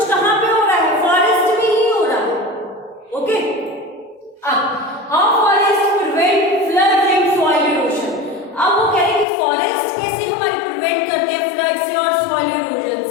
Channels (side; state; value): right; drops out; at 9.2 s